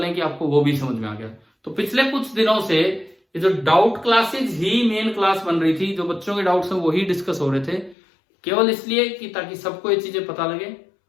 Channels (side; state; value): right; drops out; at 8.0 s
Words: कि आपको वो भी समझ में आ गया। तो पिछले कुछ दिनों से ये जो डाउट क्लासेज ही मेन क्लास बन रही थी, जो बच्चों के डाउट्स हैं वही डिस्कस हो रहे थे, केवल इसलिए कि ताकि सबको ये चीजें पता लगे